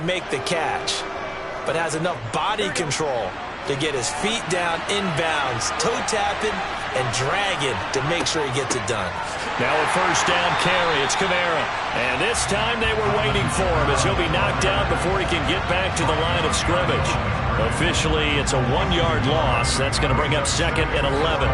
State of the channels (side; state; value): both; identical; correlation 1.00